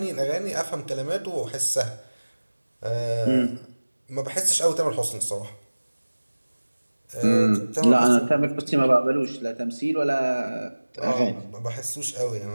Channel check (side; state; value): both; inverted; correlation -1.00